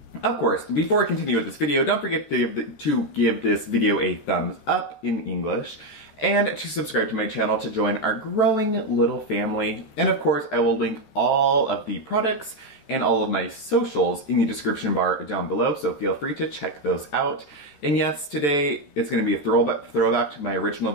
Of course, before I continue with this video, don't forget to give this video a thumbs up in English and to subscribe to my channel to join our growing little family. And of course, I will link all of the products and all of my socials in the description bar down below, so feel free to check those out. And yes, today it's going to be a throwback to my original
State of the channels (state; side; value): late; right; 14 ms